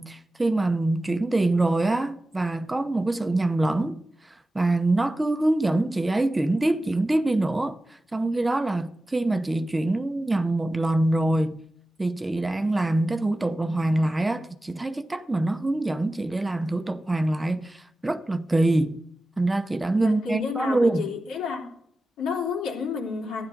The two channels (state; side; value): normal; both; correlation 0.94